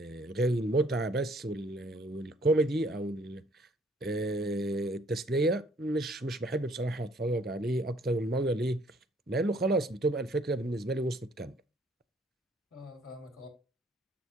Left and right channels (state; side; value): normal; both; correlation 0.62